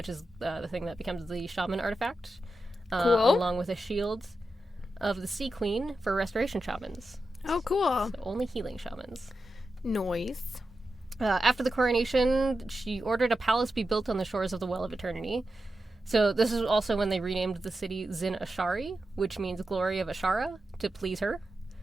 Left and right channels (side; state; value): both; normal; correlation 0.90